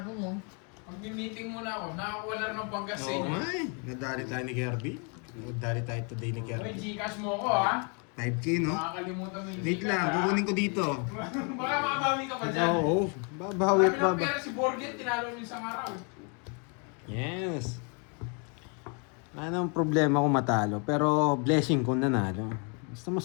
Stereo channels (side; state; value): right; quieter; 36.4 dB